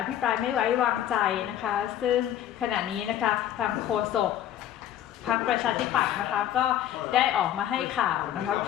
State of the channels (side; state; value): right; quieter; 11.4 dB